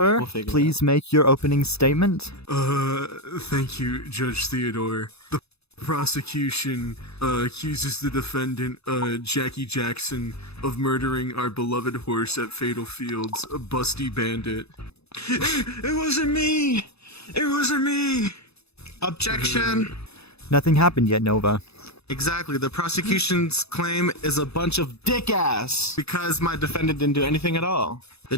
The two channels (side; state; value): right; late; 0.79 ms